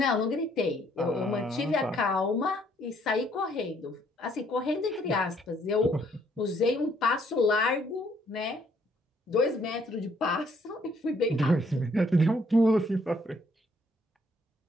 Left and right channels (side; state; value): both; normal; correlation 0.67